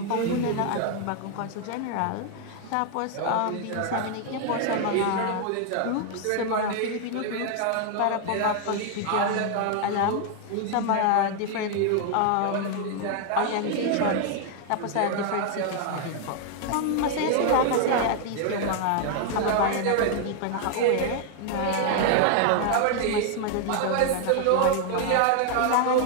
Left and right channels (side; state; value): both; different; correlation 0.00